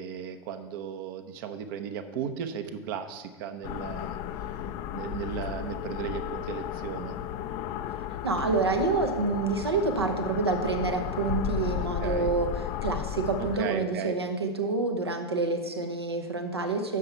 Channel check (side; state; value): both; normal; correlation 0.01